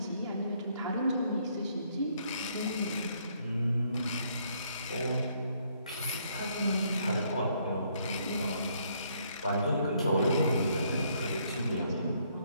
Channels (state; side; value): inverted; both; correlation -0.69